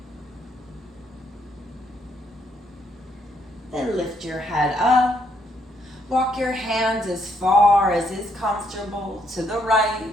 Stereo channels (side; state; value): both; normal; correlation 0.72